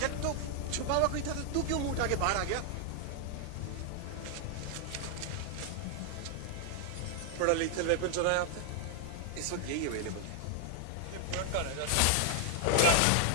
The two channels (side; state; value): both; different; correlation 0.00